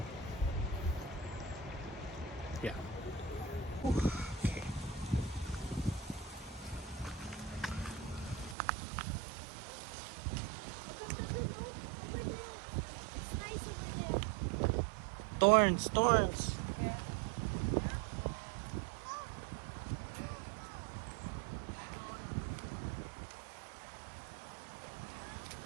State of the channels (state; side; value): drops out; left; at 8.6 s